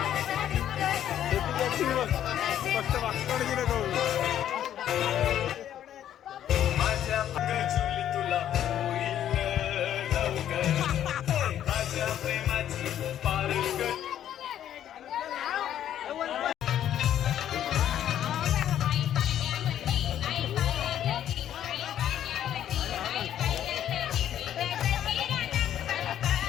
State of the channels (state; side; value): quieter; right; 10.8 dB